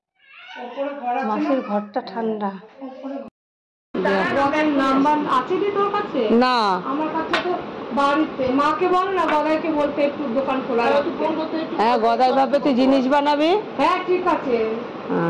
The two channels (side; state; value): both; identical; correlation 1.00